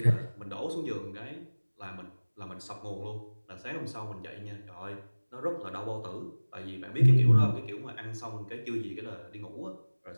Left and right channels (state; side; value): inverted; both; correlation -1.00